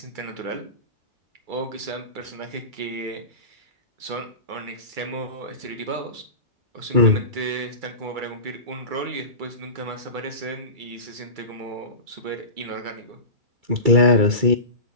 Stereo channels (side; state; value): left; late; 2.3 ms